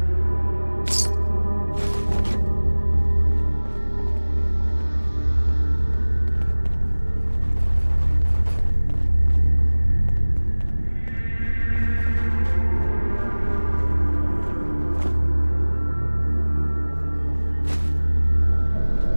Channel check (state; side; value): inverted; both; correlation -1.00